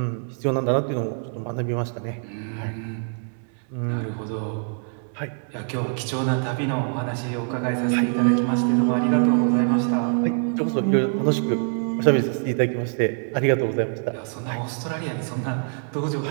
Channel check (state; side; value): silent; left; 57 dB below the other